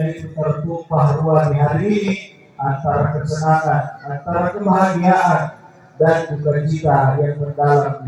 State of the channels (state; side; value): identical; both; correlation 1.00